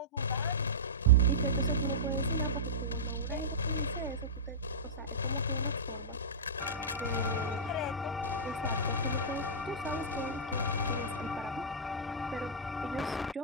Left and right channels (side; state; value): both; normal; correlation -0.14